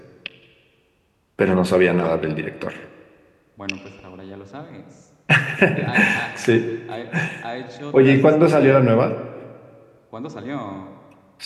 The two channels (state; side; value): identical; both; correlation 1.00